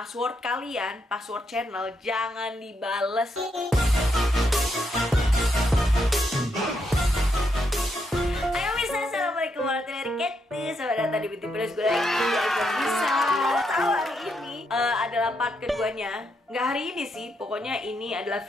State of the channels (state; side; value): normal; both; correlation 0.79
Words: kalian, password channel, jangan dibales. Ayo bisa, assalamualaikum warahmatullahi wabarakatuh. Selamat datang di Beauty Plus. Gue lagi bisa tahu hari ini adalah part keduanya. Nggak hari ini sih, pokoknya ini adalah